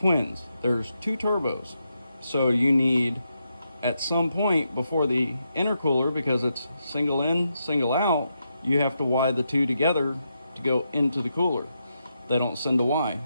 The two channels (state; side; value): inverted; both; correlation -0.83